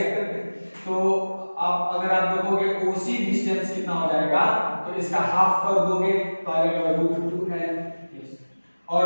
पे। तो आप अगर आप देखोगे OC डिस्टेंस कितना हो जाएगा, तो इसका हाफ कर दोगे तो आ जाएगा √2L, और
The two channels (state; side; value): inverted; both; correlation -1.00